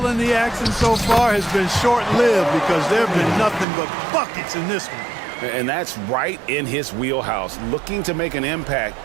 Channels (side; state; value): left; drops out; at 3.7 s